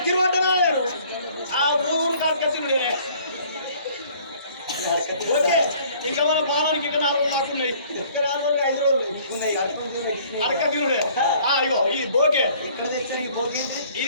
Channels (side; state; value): both; inverted; correlation -0.56